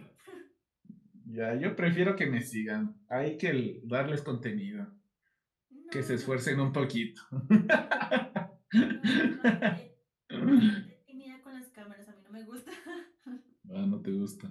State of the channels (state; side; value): identical; both; correlation 1.00